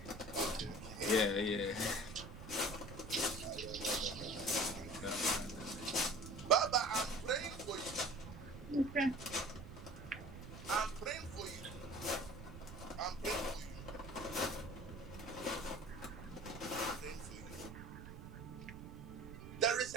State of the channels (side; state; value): right; noise; rumble, 12 dB below the sound